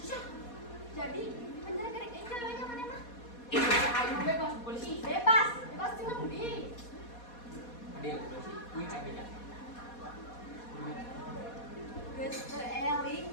Jadi, penjara gerek angel we nya maneh mah. Itu ayo bebas polisi. Bebas jeung di. Ada polisi. Kuy abenya. Geus teu eling.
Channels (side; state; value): right; late; 4.2 ms